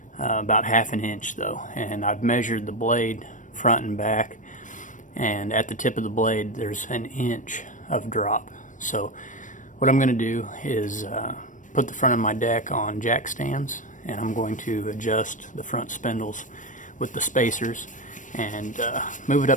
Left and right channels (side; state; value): right; late; 0.37 ms